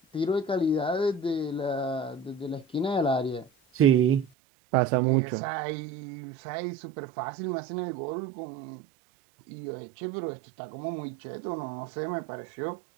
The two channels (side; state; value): left; drops out; at 4.2 s